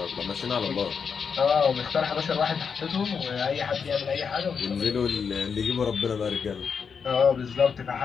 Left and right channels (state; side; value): quieter; right; 6.2 dB